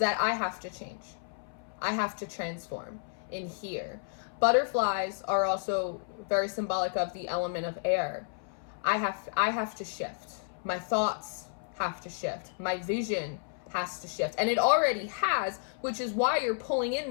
I have to change. I have to transform in here. Butterflies are also very symbolic of the element of air. I have to shift. My thoughts have to shift. My vision has to shift. And it already has, which is why you're pulling in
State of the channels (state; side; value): silent; right; 57 dB below the other